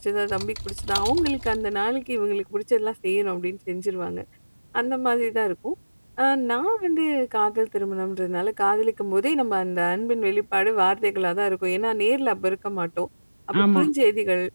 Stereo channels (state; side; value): inverted; both; correlation -1.00